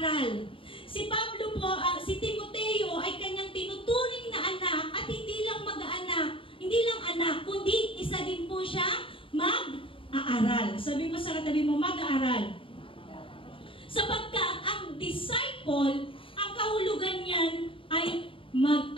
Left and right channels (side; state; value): right; late; 0.25 ms